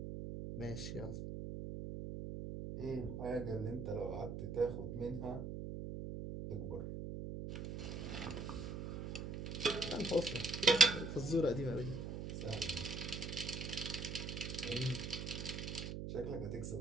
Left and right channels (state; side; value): noise; right; hum, 5 dB below the sound